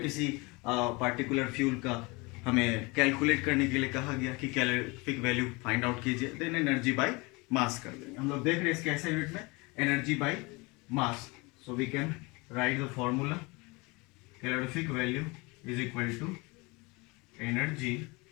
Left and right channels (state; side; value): quieter; right; 26.1 dB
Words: किसी पार्टिकुलर फ्यूल का हमें कैलकुलेट करने के लिए कहा गया कि कैलोरीफिक वैल्यू फाइंड आउट कीजिए, देन एनर्जी बाई मास कर देंगे। हम लोग देख रहे हैं इसके ऐसे यूनिट में energy by mass. So we can write the formula calorific value is equal to energy